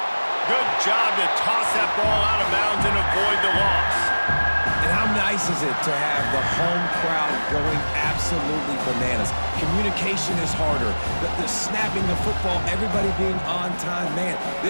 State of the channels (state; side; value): inverted; both; correlation -1.00